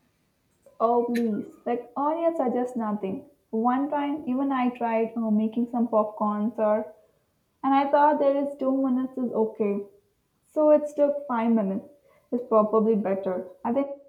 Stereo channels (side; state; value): both; identical; correlation 1.00